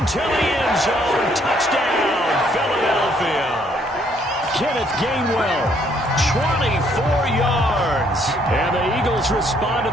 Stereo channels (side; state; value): both; normal; correlation 0.67